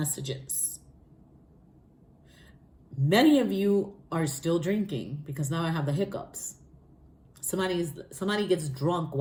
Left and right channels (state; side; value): identical; both; correlation 1.00